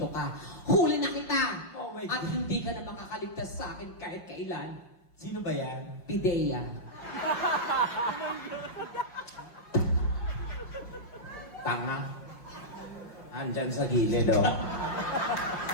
God. ka. Huli na kita! Oh my At God. hindi ka na makakaligtas sa akin kahit kailan. Sino ba yan? Pidea. Tanga. Andyan sa gilid, oh.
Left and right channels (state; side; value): late; right; 5.6 ms